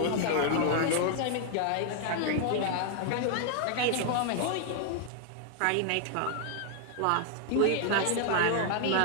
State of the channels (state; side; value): different; both; correlation 0.00